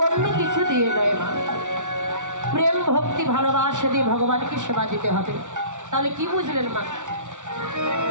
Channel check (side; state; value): left; late; 0.86 ms